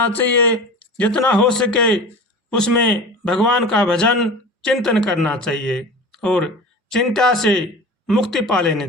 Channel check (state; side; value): normal; both; correlation 0.35